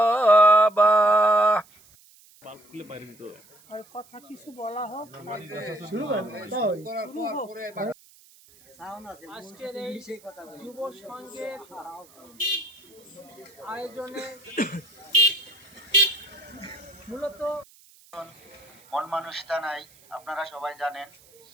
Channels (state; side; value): noise; right; hiss, 26 dB below the sound